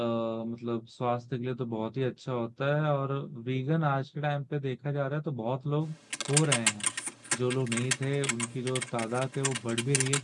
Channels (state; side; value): identical; both; correlation 1.00